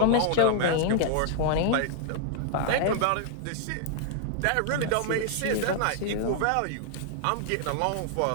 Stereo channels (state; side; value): different; both; correlation -0.01